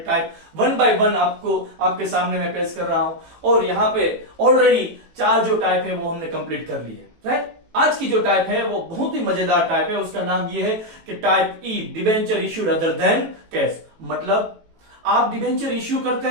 वन बाय वन आपको आपके सामने मैं पेश कर रहा हूं। और यहाँ पे ऑलरेडी 4 जो टाइप है वो हमने कंप्लीट कर ली है, राइट। आज की जो टाइप है वो बहुत ही मजेदार टाइप है। उसका नाम ये है कि टाइप ई, debenture issued other than cash. मतलब आप डिवेंचर इश्यू करते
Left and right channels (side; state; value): left; late; 18 ms